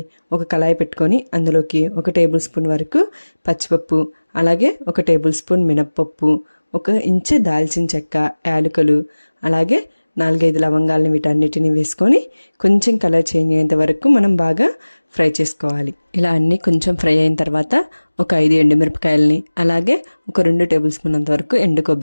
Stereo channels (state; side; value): inverted; both; correlation -1.00